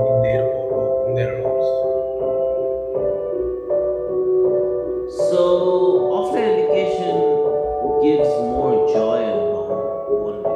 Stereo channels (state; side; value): identical; both; correlation 1.00